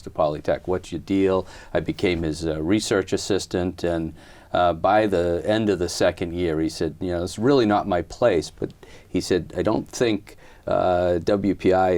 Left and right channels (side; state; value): both; identical; correlation 1.00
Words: Polytech. What's your deal? I became his research assistant, and by the end of the second year, he said, it's really not my place, but he said, I don't think WPI